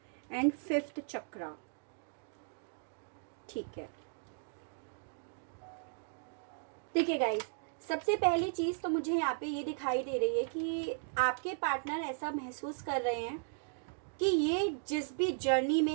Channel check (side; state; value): left; silent; digital silence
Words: and 5th चक्रा। ठीक है, देखिए गाइस, सबसे पहली चीज तो मुझे यहाँ पे ये दिखाई दे रही है कि आपके पार्टनर ऐसा महसूस कर रहे हैं कि ये जिस भी जर्नी